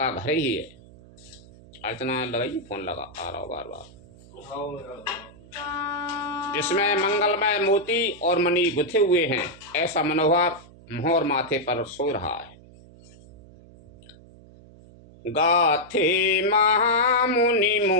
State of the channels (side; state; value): right; noise; hum, 22 dB below the sound